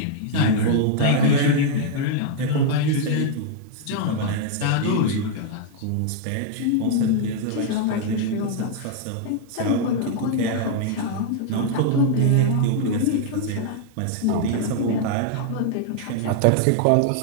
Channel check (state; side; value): different; both; correlation -0.01